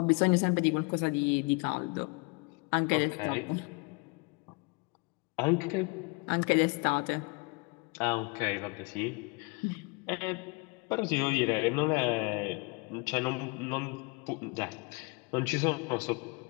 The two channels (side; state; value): right; quieter; 30.3 dB